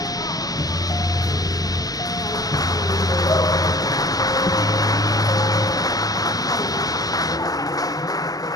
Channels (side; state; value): right; late; 0.18 ms